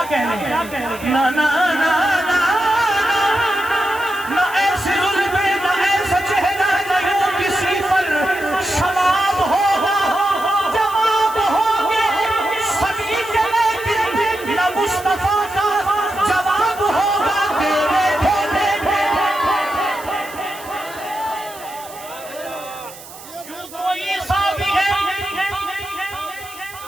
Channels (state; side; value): noise; right; hiss, 17 dB below the sound